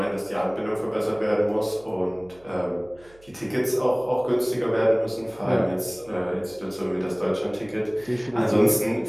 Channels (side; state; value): right; noise; hum, 27 dB below the sound